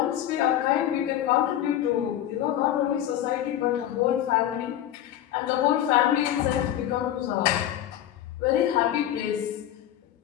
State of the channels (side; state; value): right; quieter; 11.9 dB